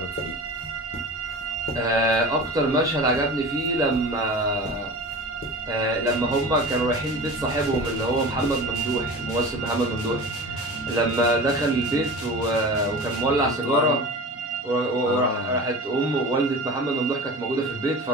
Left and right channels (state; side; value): normal; both; correlation 0.35